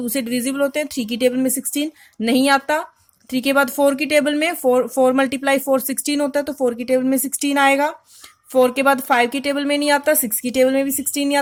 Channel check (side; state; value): both; identical; correlation 1.00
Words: से डिविजिबल होते हैं। 3 की टेबल में 16 नहीं आता। 3 के बाद 4 की टेबल में 4 मल्टीप्लाई 4 16 होता है तो 4 की टेबल में 16 आएगा। 4 के बाद 5 की टेबल में नहीं आता। 6 की टेबल में भी 16 नहीं